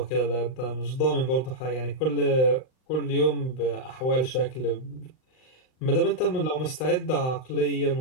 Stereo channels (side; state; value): right; late; 39 ms